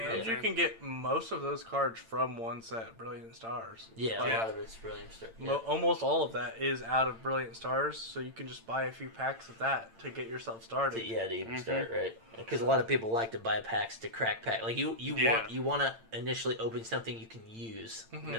know And what I'm you saying? can get most of those cards from one set, Brilliant Stars. Yeah, Yeah. a lot of it's brilliant. Yeah. Almost all of that is out of Brilliant Stars, so you can just buy a few packs of that to get yourself started. To even Mhm. start, right? Because a lot of people like to buy packs to crack pack. Like you Yeah. want to initially open something you can use, Mhm.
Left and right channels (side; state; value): left; late; 8.9 ms